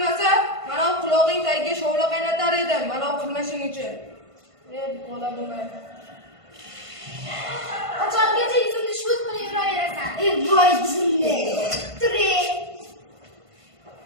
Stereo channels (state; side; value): late; left; 1.5 ms